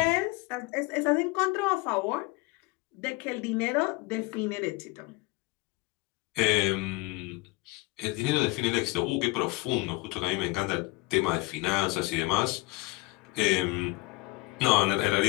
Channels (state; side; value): quieter; right; 22.9 dB